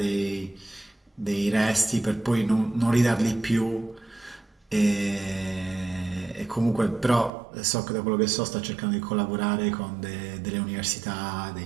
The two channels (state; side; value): drops out; left; at 7.3 s